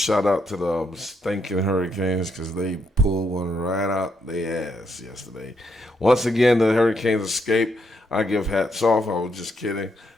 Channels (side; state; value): both; normal; correlation 0.77